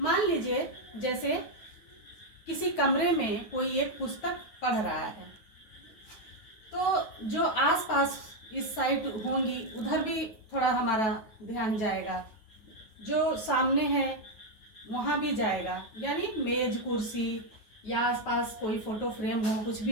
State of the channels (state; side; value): late; right; 9.4 ms